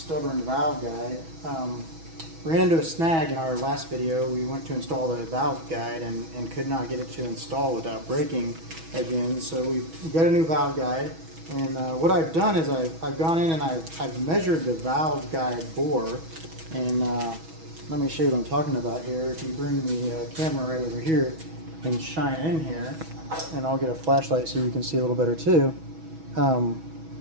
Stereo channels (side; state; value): left; late; 6.2 ms